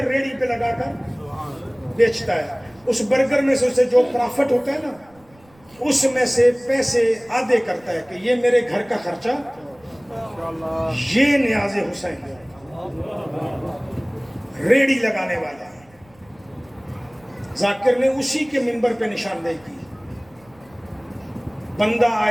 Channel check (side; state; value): right; noise; rumble, 29 dB below the sound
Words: ریڑھی پہ لگا کر بیچتا ہے، اس برگر میں سے اسے جو پرافٹ ہوتا ہے نا، اس میں سے پیسے آدھے کرتا ہے کہ یہ میرے گھر کا خرچہ، یہ نیاز حسین ریڑھی لگانے والا ہے۔ ذاکر نے اسی کے منبر پہ نشاندہی کی۔ بندہ